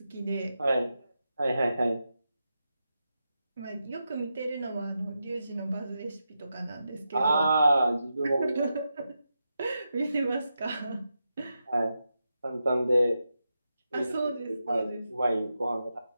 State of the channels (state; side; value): inverted; both; correlation -0.88